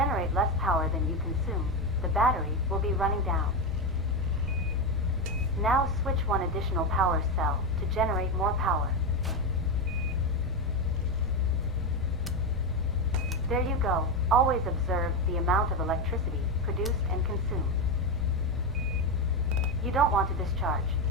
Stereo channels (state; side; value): normal; both; correlation 0.11